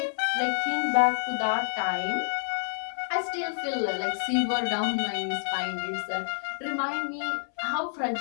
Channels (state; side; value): silent; right; 59 dB below the other